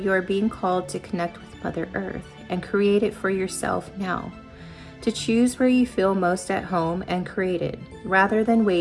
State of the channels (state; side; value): identical; both; correlation 1.00